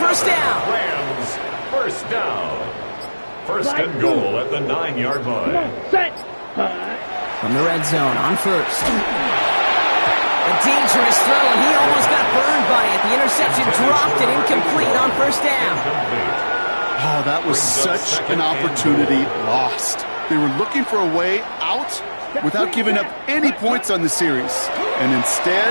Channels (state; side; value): inverted; both; correlation -1.00